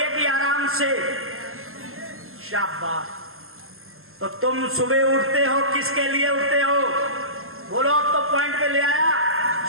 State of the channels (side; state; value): left; late; 0.62 ms